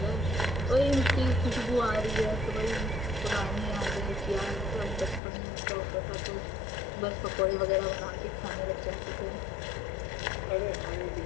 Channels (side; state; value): right; drops out; at 5.2 s